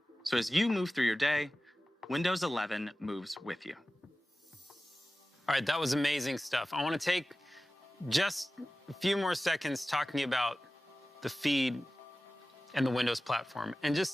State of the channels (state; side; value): normal; both; correlation 0.96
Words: So as you move through your day, Windows 11 moves with you. All right, that was amazing stuff. I want to take just a few more seconds talking about the feed and the Windows platform and